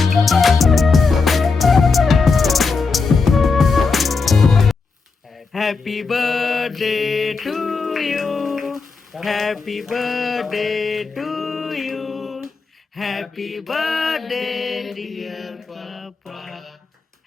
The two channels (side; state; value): right; quieter; 4.5 dB